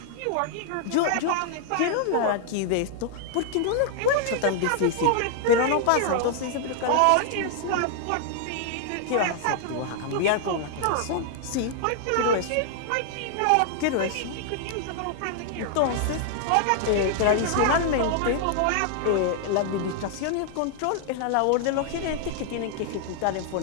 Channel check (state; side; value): different; both; correlation 0.00